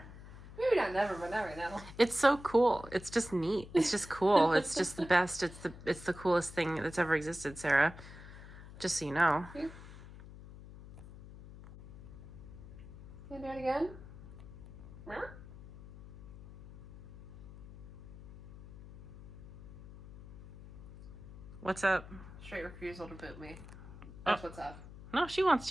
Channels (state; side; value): noise; left; hum, 15 dB below the sound